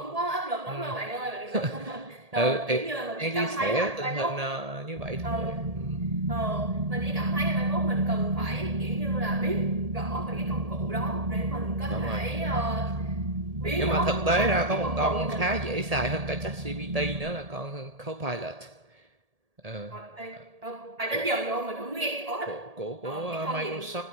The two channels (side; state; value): left; late; 1.8 ms